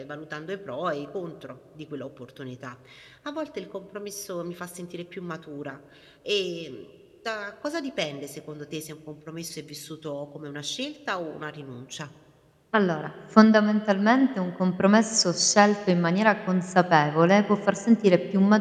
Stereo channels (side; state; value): both; identical; correlation 1.00